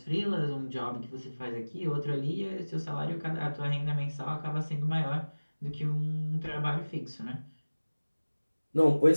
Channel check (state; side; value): inverted; both; correlation -1.00